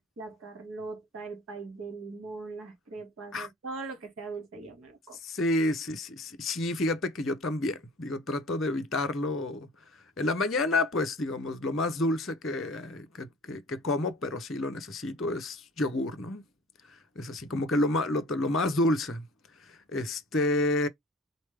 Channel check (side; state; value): both; normal; correlation 0.45